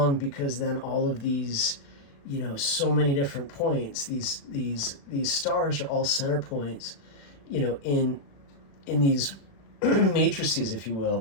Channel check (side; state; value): right; late; 36 ms